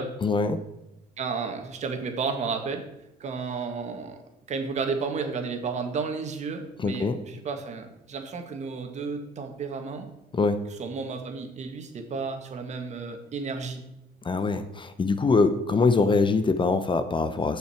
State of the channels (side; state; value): both; normal; correlation 0.59